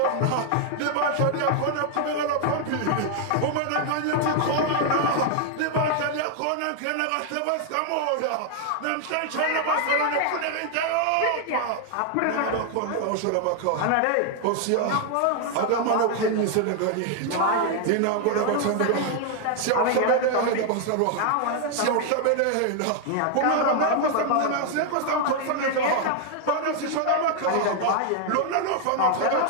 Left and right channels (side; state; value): both; different; correlation 0.00